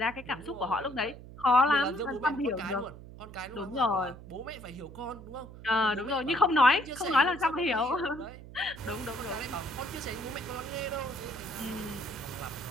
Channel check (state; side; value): noise; right; hum, 15 dB below the sound